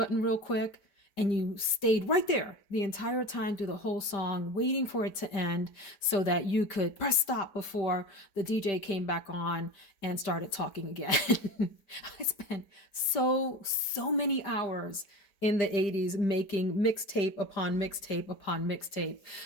real quick. And you stayed right there the entire time through the whole song, waiting for it to end so that you could press stop before the DJ came back on and started talking again. I spent so many hours in the 80s making mixtape upon mixtape upon mixtape.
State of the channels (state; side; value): late; right; 5.1 ms